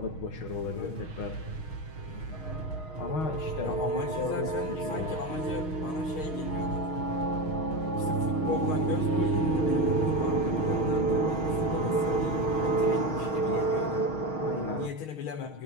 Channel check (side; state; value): right; late; 6.4 ms